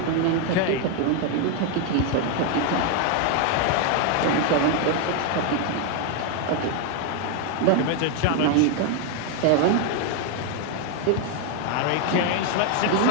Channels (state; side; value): different; both; correlation 0.01